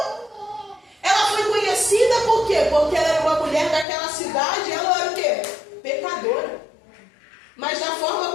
Ela foi conhecida por quê? Porque ela era uma mulher daquela cidade. Ela era o quê? Pecadora. Mas da forma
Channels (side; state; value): right; drops out; at 3.9 s